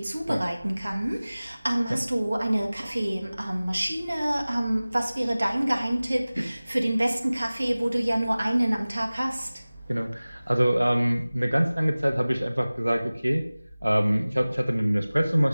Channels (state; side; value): inverted; both; correlation -0.99